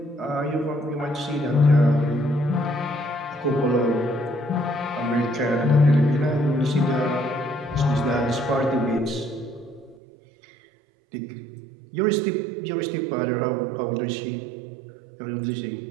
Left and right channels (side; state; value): left; drops out; at 10.0 s